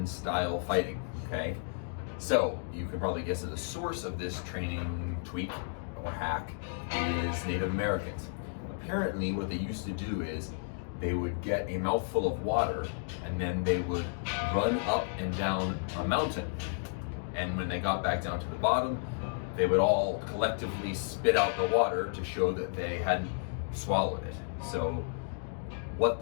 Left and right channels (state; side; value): silent; right; digital silence